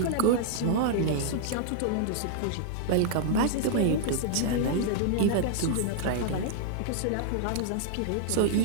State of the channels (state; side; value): different; both; correlation -0.01